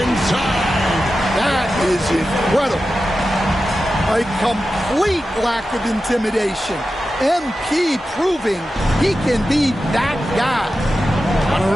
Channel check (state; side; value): normal; both; correlation 0.92